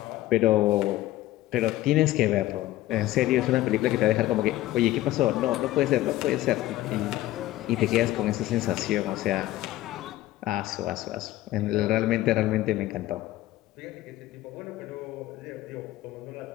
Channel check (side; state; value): right; quieter; 15.8 dB